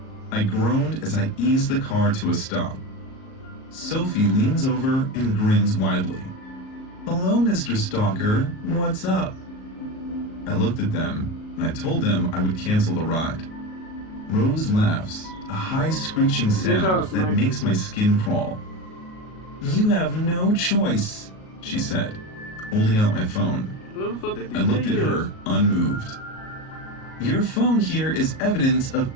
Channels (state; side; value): late; right; 38 ms